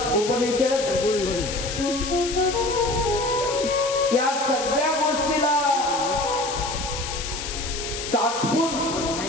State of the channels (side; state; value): left; noise; hiss, 7 dB below the sound